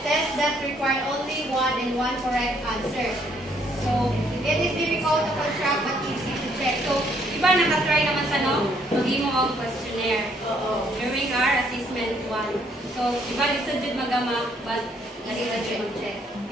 Tests that require only one and one correct answer. So it is difficult to construct but easy to check. So Iba nakatry naman sa no, mag-imo ang questionnaire during our assessment 1. So, iba lisod din magama, but easy to check.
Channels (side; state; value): both; normal; correlation 0.68